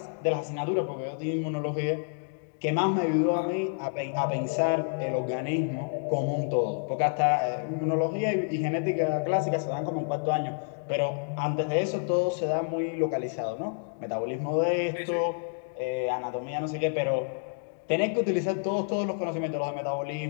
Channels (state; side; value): silent; right; digital silence